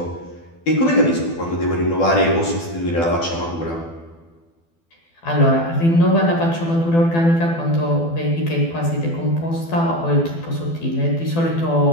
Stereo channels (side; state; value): right; late; 12 ms